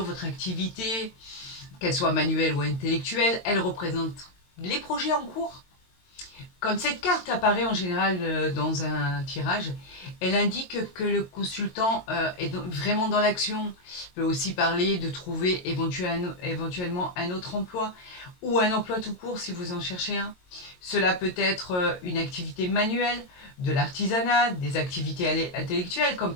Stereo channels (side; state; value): right; late; 22 ms